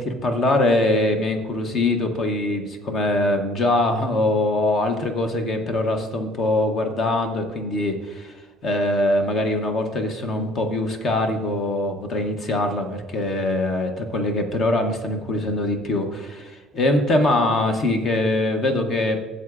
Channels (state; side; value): normal; both; correlation 0.55